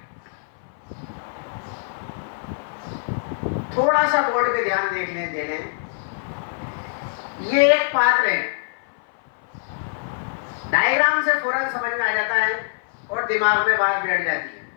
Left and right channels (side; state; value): right; silent; 58 dB below the other